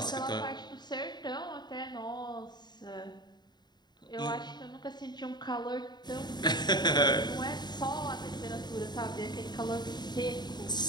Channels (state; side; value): late; right; 0.21 ms